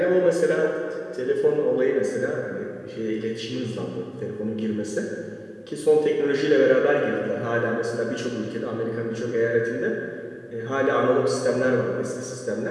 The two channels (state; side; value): identical; both; correlation 1.00